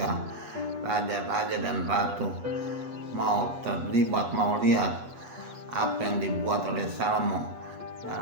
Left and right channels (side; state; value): left; late; 8.3 ms